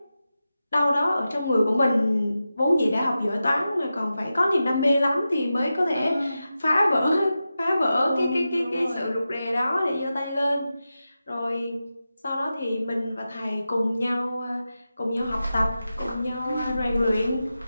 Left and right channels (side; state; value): both; inverted; correlation -0.92